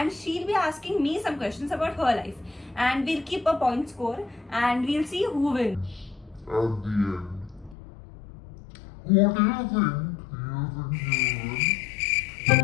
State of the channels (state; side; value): drops out; right; at 7.8 s